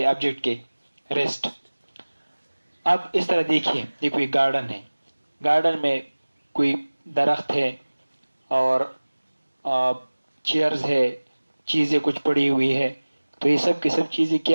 हैं ऑब्जेक्ट के? रेस्ट। अब इस तरह देखिए, ये कोई गार्डन है, गार्डन में कोई दरख्त है और चेयर्स है, चीज़ें कुछ पड़ी हुई है। तो ये सब की सब चीज़ें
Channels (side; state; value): both; inverted; correlation -1.00